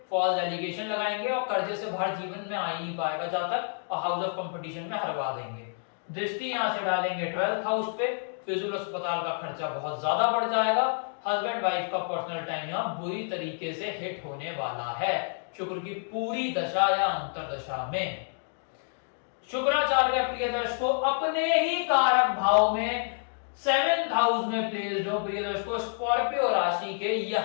फॉल्स एलिगेशन लगाएंगे और कर्जे से बाहर जीवन में आ ही नहीं पाएगा जहां तक, और हाउस ऑफ कंपटीशन में हरवा देंगे। दृष्टि यहां से डालेंगे 12th हाउस पे, फिजूल अस्पताल का खर्चा बहुत ज्यादा बढ़ जाएगा, हस्बैंड वाइफ का पर्सनल टाइम यहां बुरी तरीके से हिट होने वाला है शुक्र की पूरी दशा या अंतरदशा में। शुक्राचार्य प्रिय दर्शकों अपने ही कारक भाव में 7th हाउस में प्लेस्ड हो प्रिय दर्शकों स्कॉर्पियो राशि के,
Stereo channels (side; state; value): right; silent; 59 dB below the other